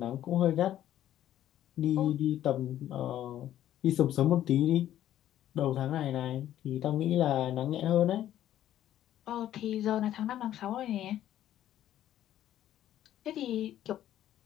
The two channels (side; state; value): right; quieter; 12.1 dB